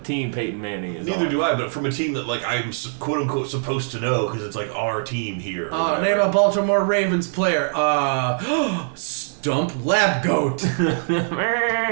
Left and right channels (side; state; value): left; silent; 60 dB below the other